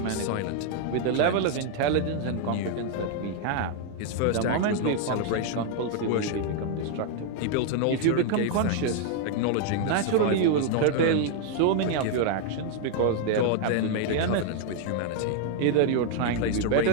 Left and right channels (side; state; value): both; different; correlation 0.00